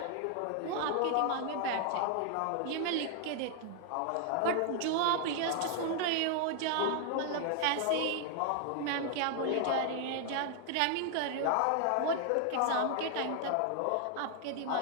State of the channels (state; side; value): different; both; correlation 0.00